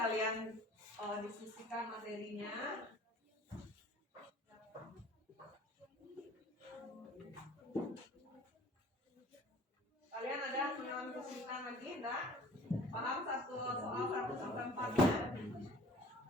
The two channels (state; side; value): normal; both; correlation 0.48